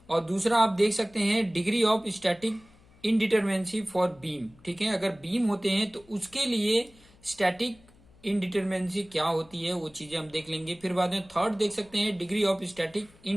और दूसरा आप देख सकते हैं degree of static indeterminacy for beam. ठीक है। अगर बीम होते हैं तो उसके लिए स्टैटिक इनडिटरमिनेंसी क्या होती है, वो चीजें हम देख लेंगे। फिर बाद में थर्ड देख सकते हैं degree of static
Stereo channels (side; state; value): left; noise; hum, 27 dB below the sound